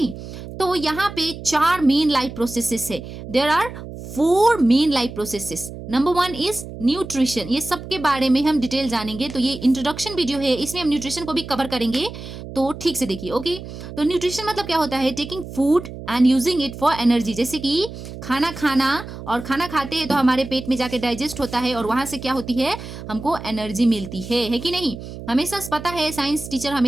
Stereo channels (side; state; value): right; noise; hum, 11 dB below the sound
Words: तो यहाँ पे 4 मेन लाइफ प्रोसेसेस है। There are 4 main life processes. Number 1 is nutrition. ये सब के बारे में हम डिटेल जानेंगे। तो ये इंट्रोडक्शन वीडियो है, इसमें हम न्यूट्रिशन को भी कवर करेंगे, तो ठीक से देखिए। ओके, तो न्यूट्रिशन मतलब क्या होता है? Taking food and using it for energy. जैसे कि खाना खाना, और खाना खाते हैं तो हमारे पेट में जाके डाइजेस्ट होता है और वहां से क्या होती है? हमको एनर्जी मिलती है कि नहीं? हमेशा पता है, साइंस टीचर